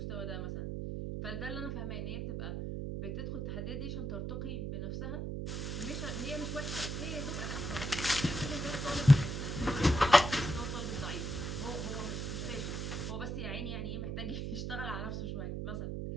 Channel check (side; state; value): right; noise; hum, 3 dB below the sound